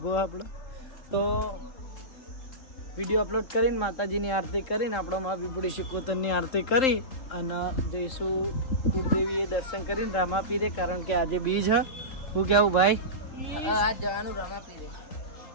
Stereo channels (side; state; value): right; late; 3.8 ms